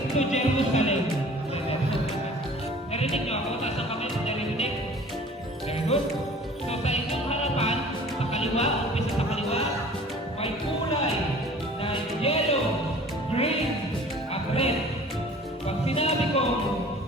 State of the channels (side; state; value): both; normal; correlation 0.47